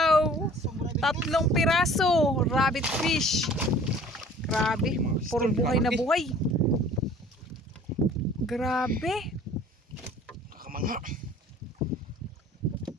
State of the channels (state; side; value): normal; both; correlation 0.50